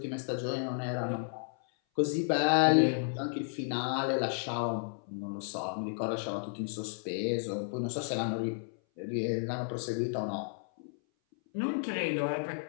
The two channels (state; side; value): silent; right; 56 dB below the other